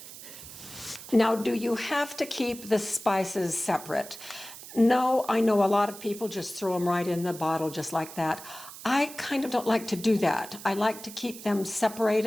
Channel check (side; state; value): right; noise; hiss, 14 dB below the sound